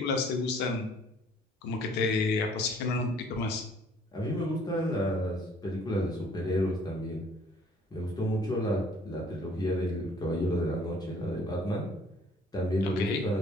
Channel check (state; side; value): normal; both; correlation 0.58